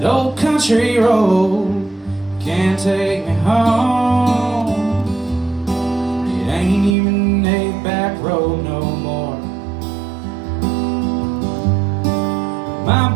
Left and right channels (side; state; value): left; drops out; at 7.0 s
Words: old country road can't take me home. It ain't even a back road no more. My